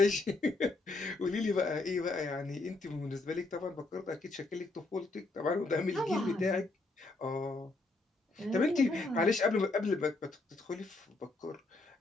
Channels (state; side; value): quieter; right; 3.2 dB